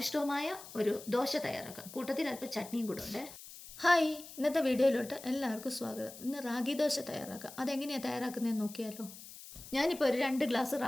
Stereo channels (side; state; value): left; noise; hiss, 15 dB below the sound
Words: ഒരു ദോശ തയ്യാറാക്കാം. കൂട്ടത്തിൽ അല്പം ചട്നിയും കൂടെ ഉണ്ട്. ഹായ്, ഇന്നത്തെ വീഡിയോയിലോട്ട് എല്ലാവർക്കും സ്വാഗതം. ഇന്ന് റാഗി ദോശ തയ്യാറാക്കാം. അതെങ്ങനെയാണ് തയ്യാറാക്കുന്നതെന്ന് നോക്കിയാലോ. ഞാനിപ്പോൾ ഒരു 2 ഗ്ലാസ്